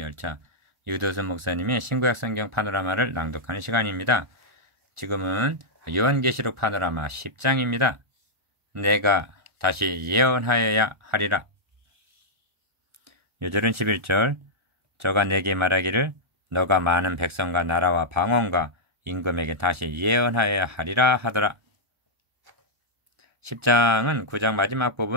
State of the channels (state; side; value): late; left; 1.4 ms